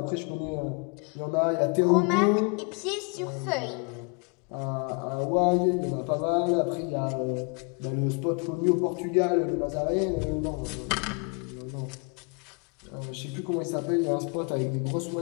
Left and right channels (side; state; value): right; quieter; 34.2 dB